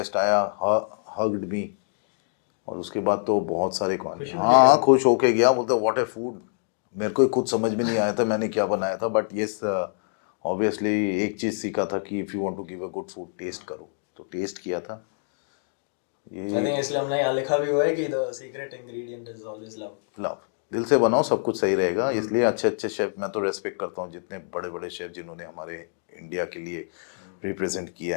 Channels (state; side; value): silent; right; digital silence